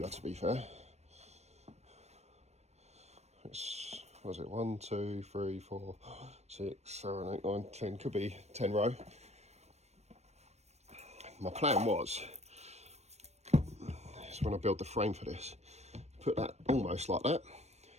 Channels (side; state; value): left; late; 0.31 ms